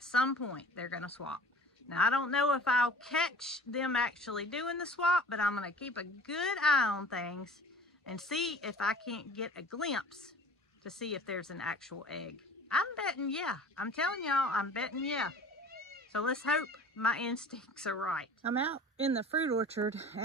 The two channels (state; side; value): normal; both; correlation 0.44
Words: some point they're gonna swap. Now, I don't know if I'll catch them actually doing the swap, but I'm going to keep a good eye on things and see if I can't get a glimpse to see if there's an actual egg. I'm betting yeah. I'm telling y'all, I'm betting yeah. So let's hope my instincts are right. I'm out in the fruit orchard,